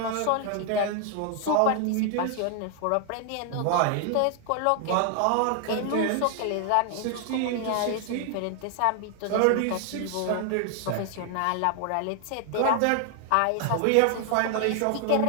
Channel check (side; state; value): both; different; correlation 0.00